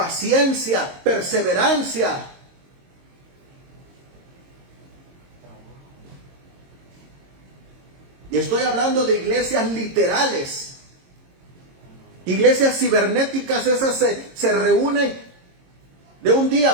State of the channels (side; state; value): left; late; 22 ms